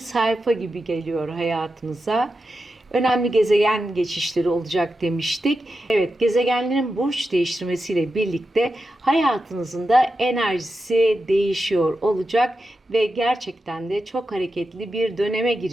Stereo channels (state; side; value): normal; both; correlation 0.89